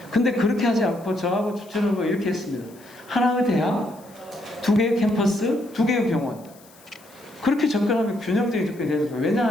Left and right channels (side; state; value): left; noise; hiss, 26 dB below the sound